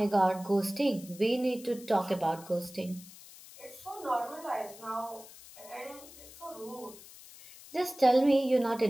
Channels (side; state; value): left; noise; hiss, 19 dB below the sound